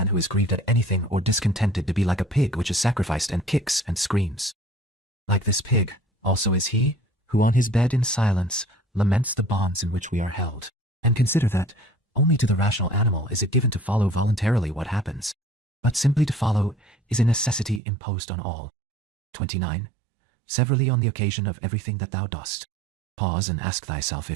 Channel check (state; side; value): drops out; left; at 17.8 s